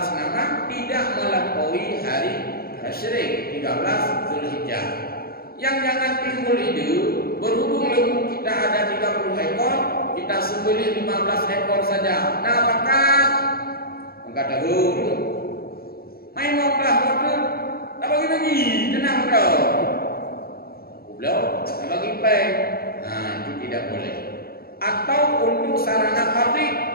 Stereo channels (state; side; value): late; right; 0.44 ms